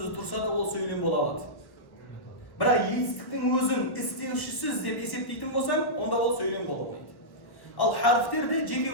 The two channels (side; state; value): right; late; 1.1 ms